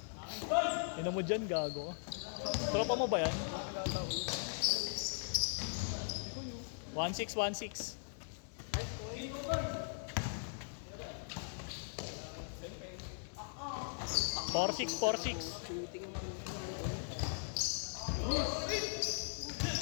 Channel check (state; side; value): silent; right; digital silence